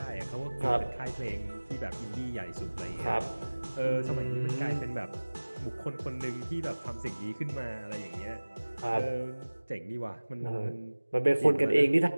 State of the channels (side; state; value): both; inverted; correlation -1.00